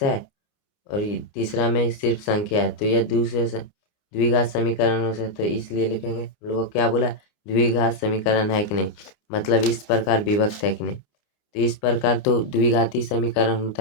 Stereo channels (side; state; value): right; late; 29 ms